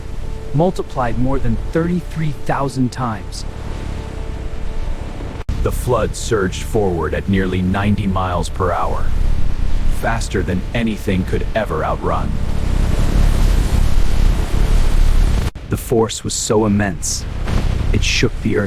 multiplied more than 33,000 times. The flood surged forward at nearly 90 miles per hour, faster than anything could ever outrun. The force was so immense, it shook the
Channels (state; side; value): identical; both; correlation 1.00